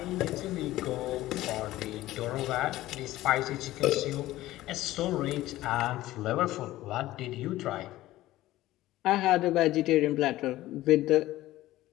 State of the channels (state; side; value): quieter; right; 16.1 dB